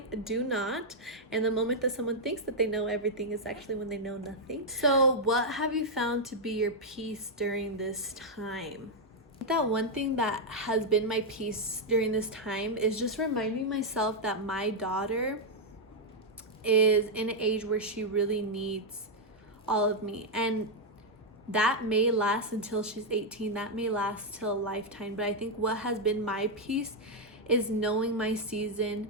do not. And the moment that someone thinks that they know everything is actually when they know nothing. So what have you found to be your peace during this time? That one thing that has been my peace during this time is just reminding myself that my daughter is in an age where she really needs all of me. And that may last until she's 18. That may last till a lifetime. But I think what has been my peace is knowing my season,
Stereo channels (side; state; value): both; normal; correlation -0.02